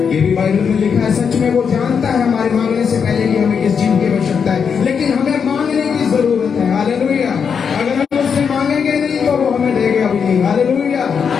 ये भी बाइबल में लिखा है। सच में वो जानता है हमारे मांगने से पहले कि हमें किस चीज की आवश्यकता है, लेकिन हमें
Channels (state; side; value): quieter; right; 6.6 dB